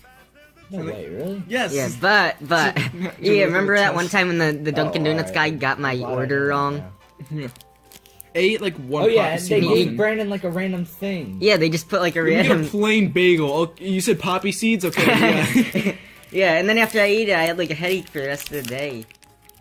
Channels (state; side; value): identical; both; correlation 1.00